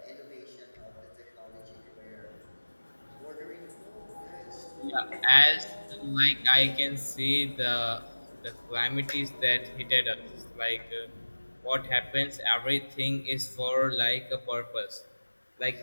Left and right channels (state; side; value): inverted; both; correlation -1.00